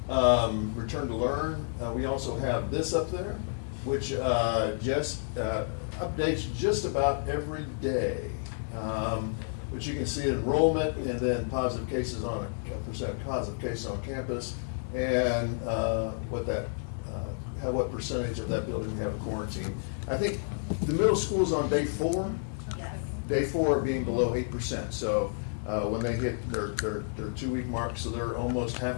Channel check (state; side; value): silent; right; digital silence